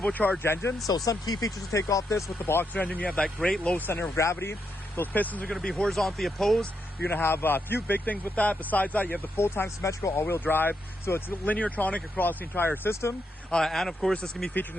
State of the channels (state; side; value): normal; both; correlation 0.81